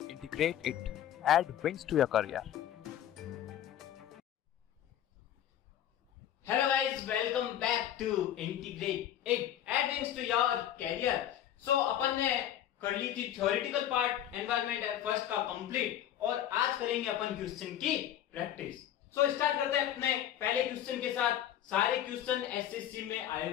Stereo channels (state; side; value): quieter; right; 11.2 dB